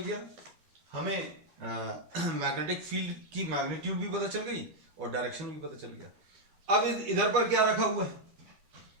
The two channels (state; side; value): late; left; 12 ms